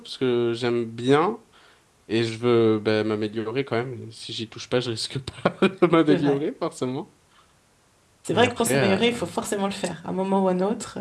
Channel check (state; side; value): identical; both; correlation 1.00